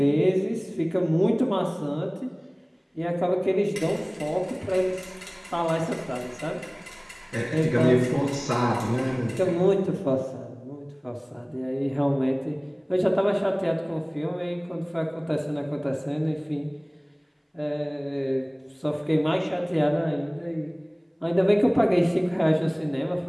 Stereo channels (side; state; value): both; identical; correlation 1.00